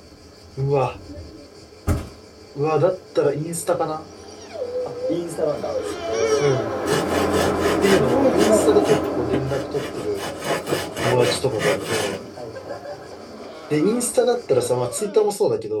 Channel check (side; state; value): both; identical; correlation 1.00